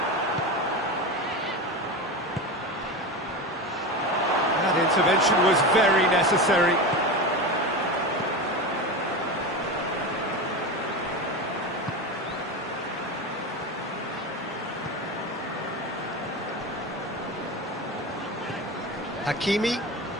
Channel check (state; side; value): normal; both; correlation 0.23